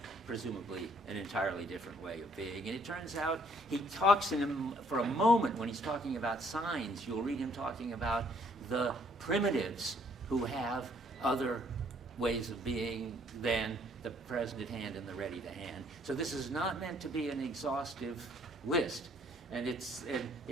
presumably an entirely different way of being. And it turns out he talks for a moment when he's talking about signs, you'll read him talking about the primitives who have other ways of being than the present at hand and the ready to hand. So this is not meant to be an exhaustive list. And it's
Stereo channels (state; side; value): normal; both; correlation 0.63